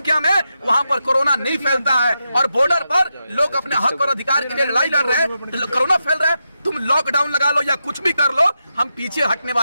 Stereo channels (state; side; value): inverted; both; correlation -0.87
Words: में, वहां पर कोरोना नहीं फैलता है। और बॉर्डर पर लोग अपने हक और अधिकार के लिए लड़ाई लड़ रहे हैं तो कोरोना फैल रहा है। तुम लॉकडाउन लगा लो या कुछ भी कर लो, हम पीछे हटने